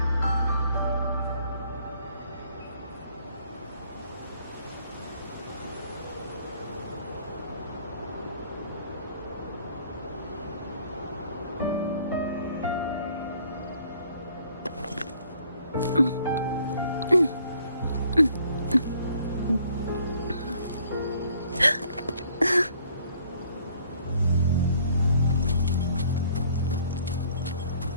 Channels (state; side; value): inverted; both; correlation -0.61